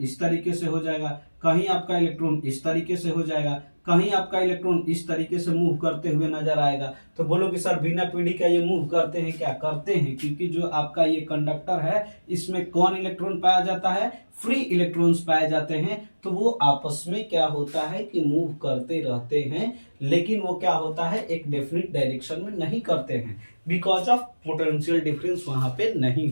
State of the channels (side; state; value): both; inverted; correlation -1.00